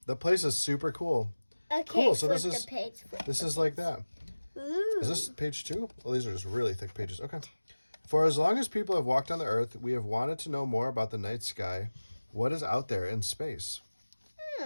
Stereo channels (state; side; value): inverted; both; correlation -1.00